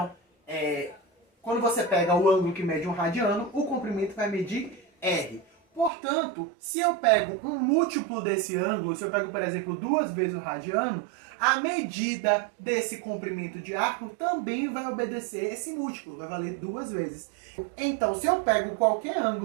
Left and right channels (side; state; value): left; drops out; at 5.9 s